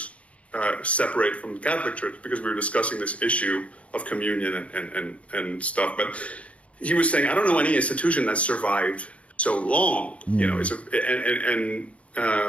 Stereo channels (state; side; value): late; right; 0.064 ms